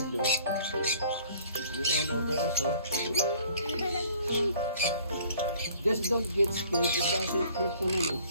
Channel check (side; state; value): both; inverted; correlation -0.55